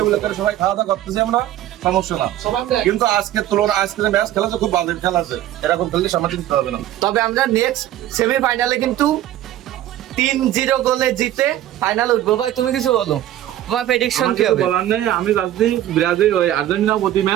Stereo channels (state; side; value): quieter; left; 13.0 dB